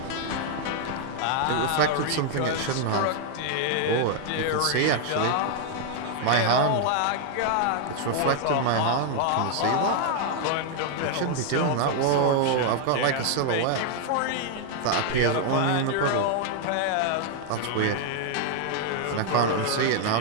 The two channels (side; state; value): both; different; correlation 0.00